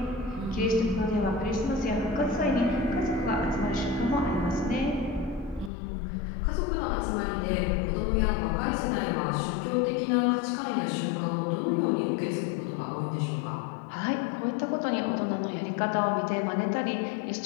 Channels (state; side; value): drops out; right; at 5.7 s